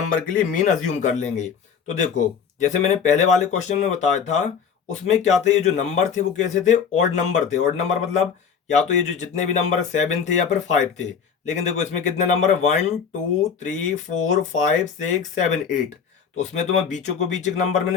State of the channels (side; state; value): right; quieter; 6.8 dB